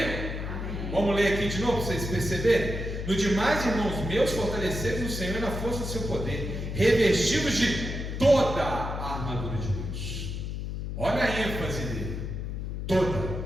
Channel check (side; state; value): left; noise; hum, 5 dB below the sound